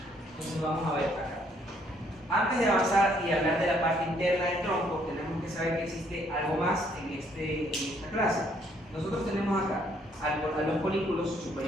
Entonces vamos a ver acá. Antes de avanzar y hablar de la parte interna del tronco, tenemos que saber que existe algo más en esta clase. Nosotros tenemos acá a los folículos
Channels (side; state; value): both; normal; correlation 0.67